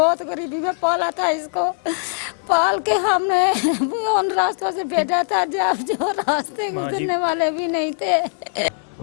गरीबी में पाला था इसको, पाल के हमने उन रास्तों से भेजा था जब जो रास्ते गुजरने वाले भी नहीं थे।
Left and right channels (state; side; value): silent; right; digital silence